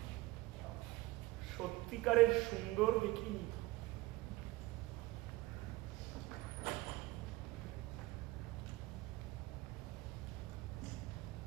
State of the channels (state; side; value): quieter; left; 19.7 dB